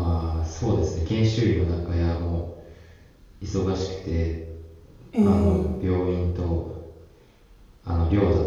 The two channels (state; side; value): identical; both; correlation 1.00